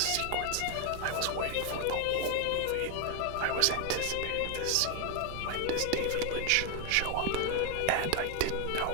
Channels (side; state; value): both; different; correlation 0.01